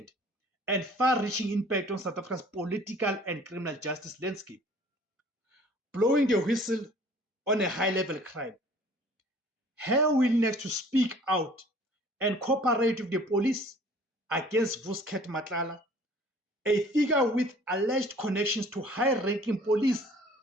and far-reaching impact on South Africa's political and criminal justice landscape, blowing the whistle on a high-level crime. Her willingness to speak out and cooperate with the police against Vusket Matlala, a figure with alleged connections to high-ranking police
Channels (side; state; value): both; normal; correlation 0.51